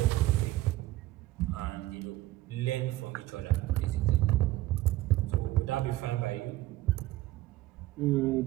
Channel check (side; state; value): left; quieter; 16.3 dB